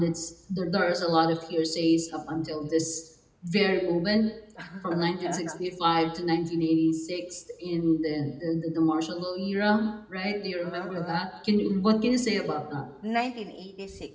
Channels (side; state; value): both; identical; correlation 1.00